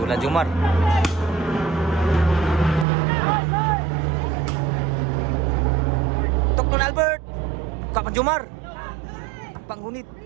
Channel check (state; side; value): drops out; left; at 2.9 s